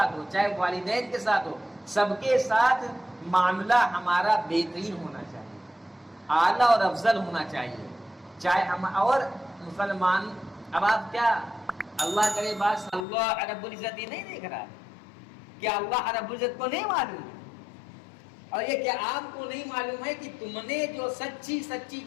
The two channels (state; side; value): drops out; right; at 13.1 s